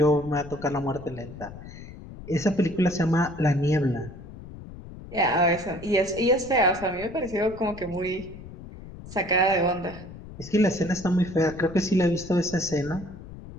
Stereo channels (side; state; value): left; noise; rumble, 14 dB below the sound